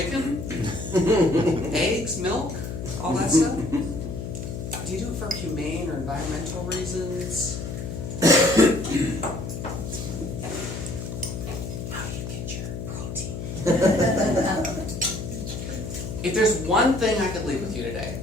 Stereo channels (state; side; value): noise; left; hum, 6 dB below the sound